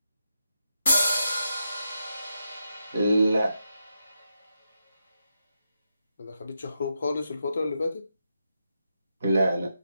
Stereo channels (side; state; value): both; inverted; correlation -0.85